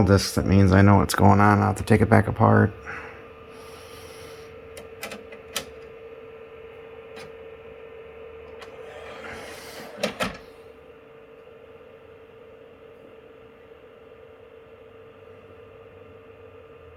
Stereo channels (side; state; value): both; identical; correlation 1.00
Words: discs, that means I know what's going on. I'll have to take it back apart.